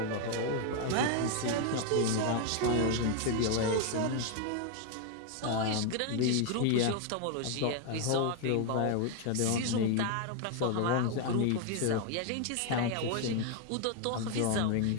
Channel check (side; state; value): both; different; correlation 0.01